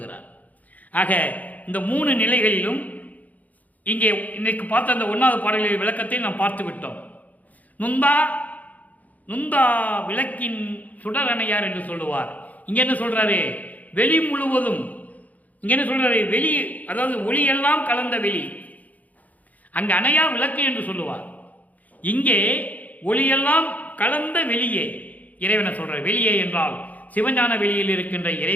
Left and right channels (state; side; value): late; right; 0.077 ms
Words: ஆக இந்த 3 நிலைகளிலும் இங்கே இன்னைக்கு பார்த்த அந்த 1வது பாடலின் விளக்கத்தை நாம் பார்த்து விட்டோம். நுந்தா விளக்கின் சுடரணையார் என்று சொல்லுவார். இங்க என்ன சொல்றாரு? வெளி முழுவதும். இங்க என்ன சொல்றாரு? வெளி, அதாவது ஒளியெல்லாம் கலந்த வெளி. அங்கு அணையா விளக்கு என்று சொல்லுவார். இங்கே ஒளியெல்லாம் கலந்த வெளியே இறைவனை சொல்ற. வெளியே என்றால் சிவஞான வெளியில் இருக்கின்ற